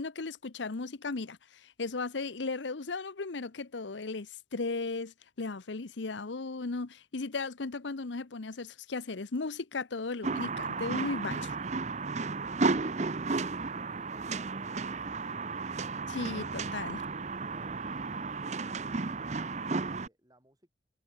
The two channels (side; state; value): both; normal; correlation 0.07